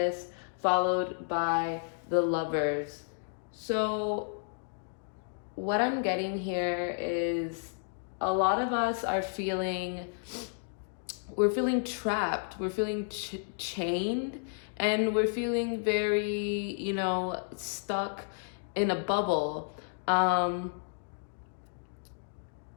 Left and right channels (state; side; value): silent; right; digital silence